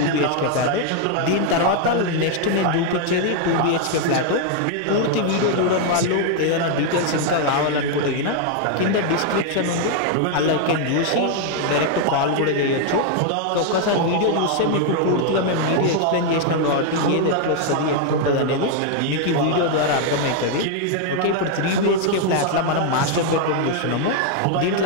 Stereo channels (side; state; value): both; different; correlation 0.00